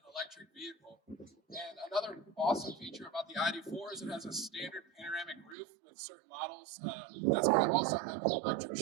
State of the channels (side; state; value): left; drops out; at 5.6 s